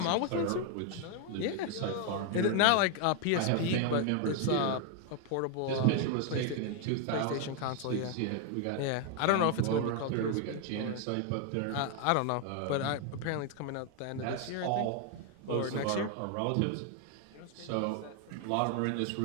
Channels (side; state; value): both; different; correlation 0.01